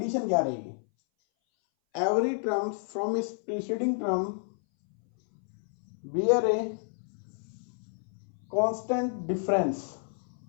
क्या रहेगी, every term from its preceding term bear a constant difference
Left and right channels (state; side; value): silent; right; 58 dB below the other